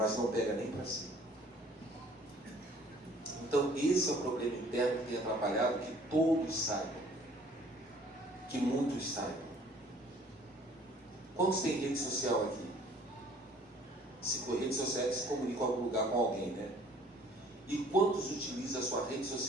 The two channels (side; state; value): both; normal; correlation 0.55